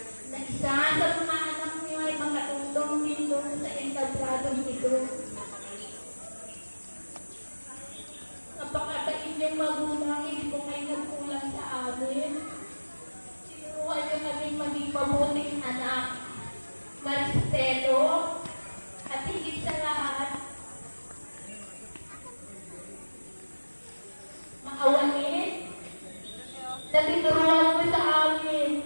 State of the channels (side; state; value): both; inverted; correlation -1.00